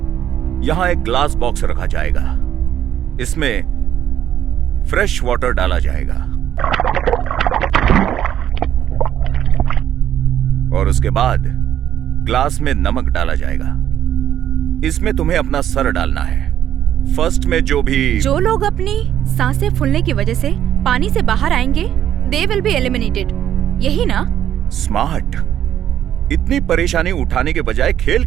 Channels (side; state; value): left; quieter; 10.5 dB